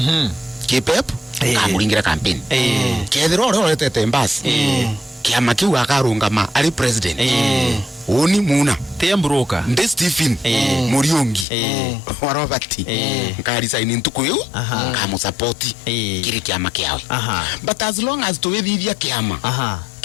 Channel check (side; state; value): right; drops out; at 11.5 s